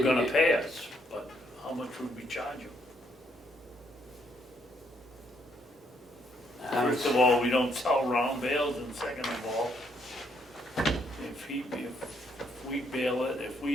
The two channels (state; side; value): normal; both; correlation 0.72